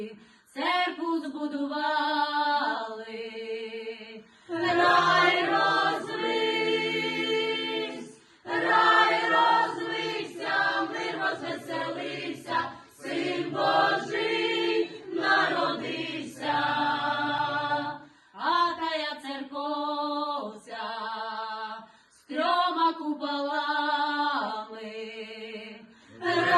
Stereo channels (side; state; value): both; identical; correlation 1.00